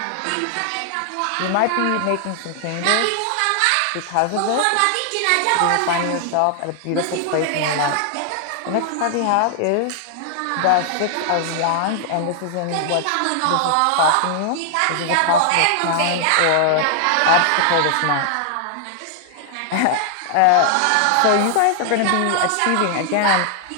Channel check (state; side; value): different; both; correlation 0.00